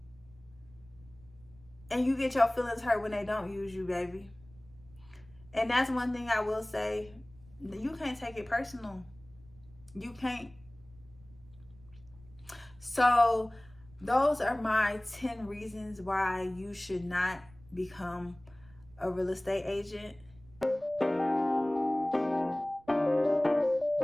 And you get your feelings hurt when they don't use you, baby. And that's one thing I will say. You can't take it personal. You can't. So those are my 10 reasons why you should not become a real estate agent.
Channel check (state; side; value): noise; right; rumble, 25 dB below the sound